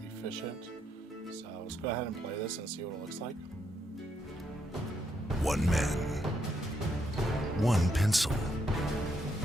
efficient. So let's go ahead and play this and see what it looks like. One man, one pencil,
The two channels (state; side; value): normal; both; correlation 0.77